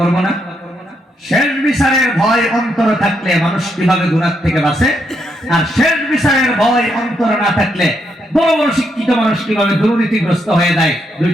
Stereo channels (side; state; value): both; normal; correlation 0.78